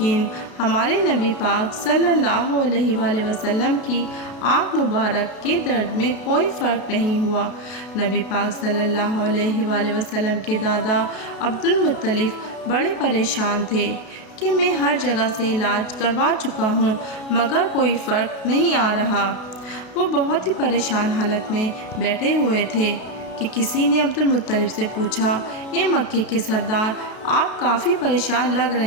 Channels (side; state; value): right; late; 32 ms